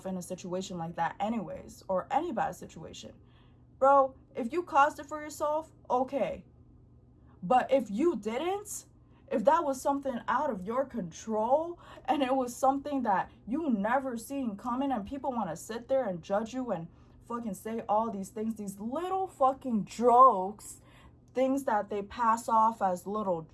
in a situation like that anyways, or any bad situation. Bro, if you caused it for yourself, okay. But if you didn't, if that was something out of your control and it was something that you never seen coming, and people want to sit there and judge you and fucking say all these things, these little fucking jokes, things that they pass off as little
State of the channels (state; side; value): identical; both; correlation 1.00